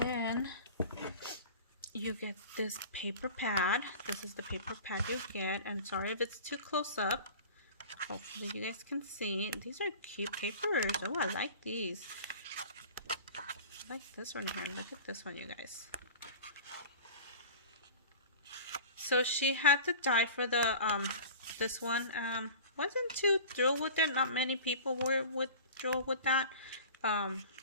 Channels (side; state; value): both; inverted; correlation -0.39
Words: you get this paper pad. This is the paper pad you get. And sorry if it's too close up. Hopefully you guys can see. These are cute papers. Oh, I like these. I like this one here. Look at this one, you guys. So she had to die for the this one. Wasn't too thrilled with it. Not many people were thrilled with that.